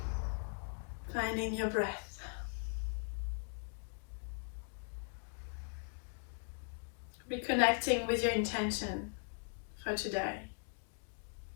finding your breath. Reconnecting with your intention for today.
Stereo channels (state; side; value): silent; right; 51 dB below the other